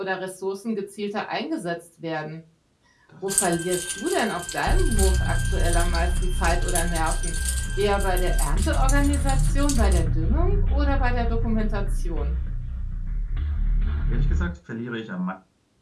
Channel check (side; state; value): both; identical; correlation 1.00